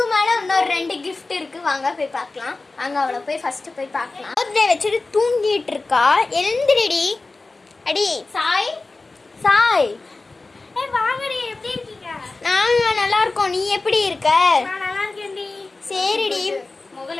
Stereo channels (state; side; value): quieter; right; 3.5 dB